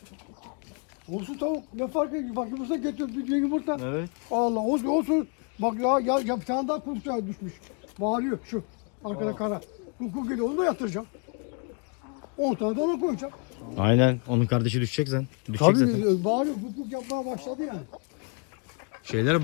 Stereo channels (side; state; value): right; quieter; 35.5 dB